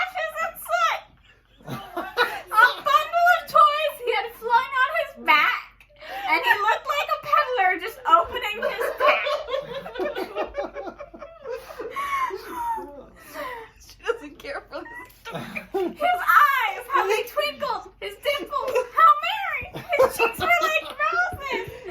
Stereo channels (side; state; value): both; identical; correlation 1.00